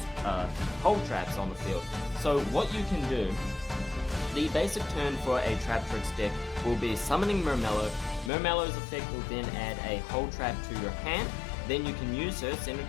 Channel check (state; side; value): drops out; right; at 8.3 s